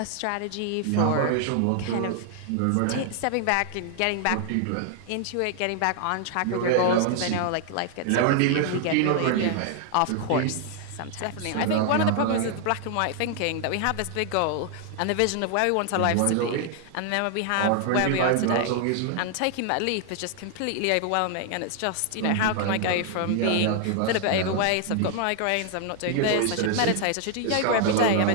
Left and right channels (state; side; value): different; both; correlation 0.00